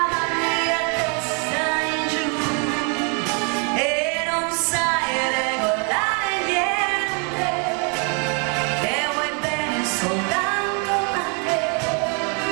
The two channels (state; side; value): quieter; left; 37.1 dB